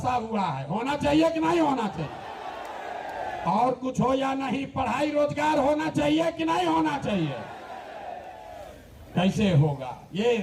हुआ है। होना चाहिए कि नहीं होना चाहिए? और कुछ हो या नहीं, पढ़ाई रोजगार होना चाहिए कि नहीं होना चाहिए? कैसे होगा ये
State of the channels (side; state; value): both; identical; correlation 1.00